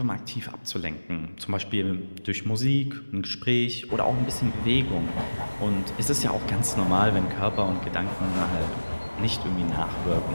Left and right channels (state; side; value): inverted; both; correlation -1.00